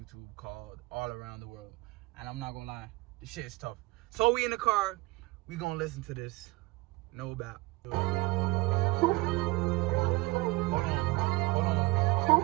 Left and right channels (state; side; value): quieter; left; 21.8 dB